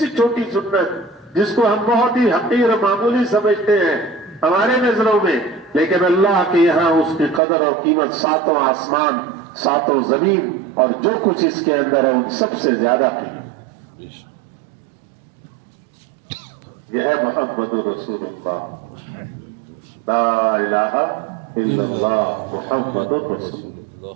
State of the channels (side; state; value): left; drops out; at 7.4 s